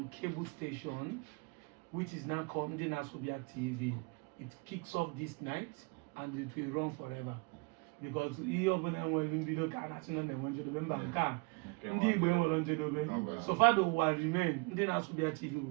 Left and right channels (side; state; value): left; quieter; 30.0 dB